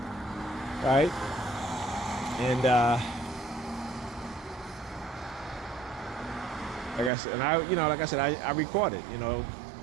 right? And like I said, I record it.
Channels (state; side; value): drops out; left; at 7.1 s